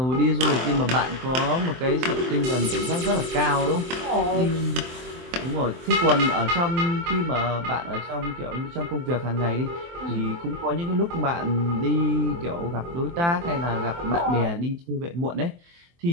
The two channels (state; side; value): late; left; 23 ms